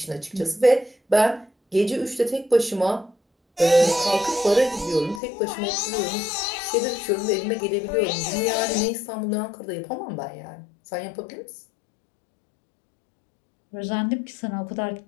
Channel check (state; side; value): drops out; right; at 5.2 s